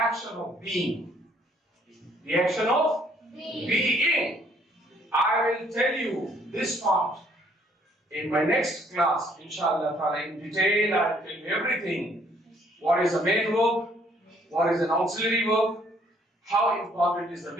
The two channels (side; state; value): both; normal; correlation 0.64